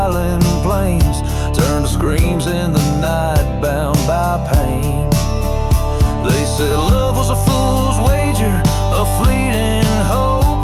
plains, turn to screams in the night bound by pain. They said love was a fool's wager, a fleeting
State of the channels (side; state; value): both; identical; correlation 1.00